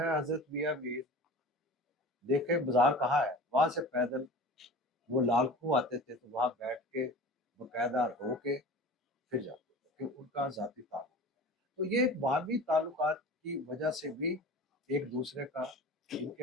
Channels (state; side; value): normal; both; correlation 0.37